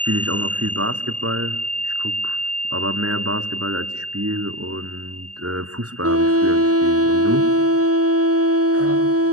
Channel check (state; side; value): late; left; 0.67 ms